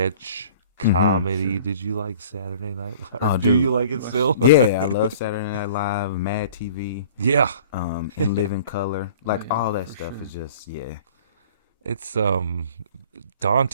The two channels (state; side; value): inverted; both; correlation -0.48